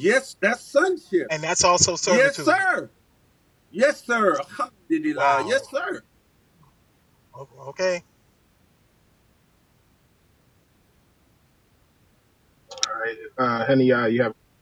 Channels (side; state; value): both; identical; correlation 1.00